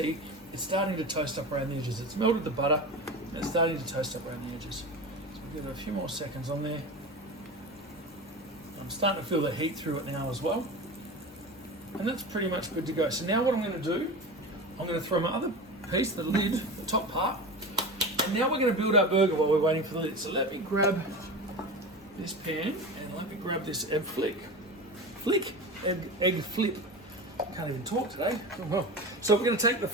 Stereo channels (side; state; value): both; normal; correlation 0.28